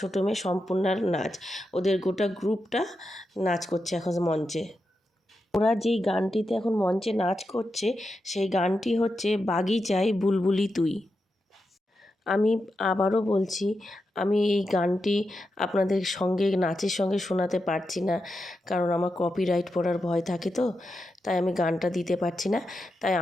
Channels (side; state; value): both; normal; correlation 0.88